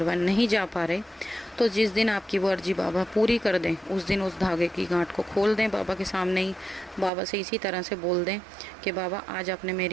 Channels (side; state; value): left; drops out; at 7.1 s